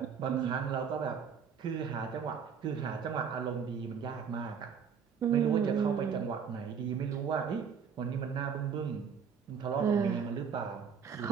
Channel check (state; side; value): quieter; left; 6.8 dB